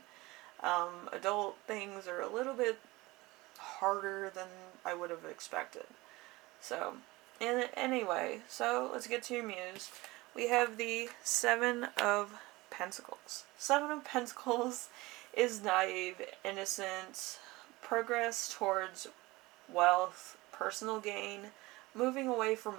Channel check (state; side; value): quieter; left; 21.3 dB